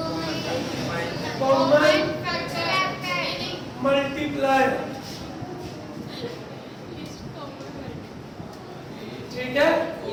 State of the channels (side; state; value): both; identical; correlation 1.00